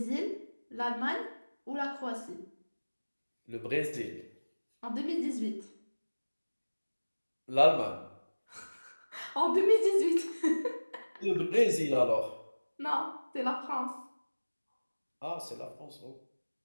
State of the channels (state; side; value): inverted; both; correlation -1.00